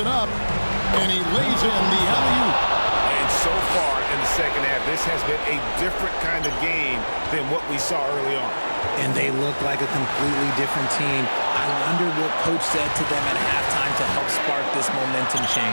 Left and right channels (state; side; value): inverted; both; correlation -1.00